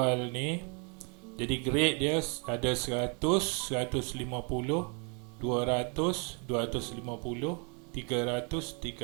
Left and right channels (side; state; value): left; quieter; 36.2 dB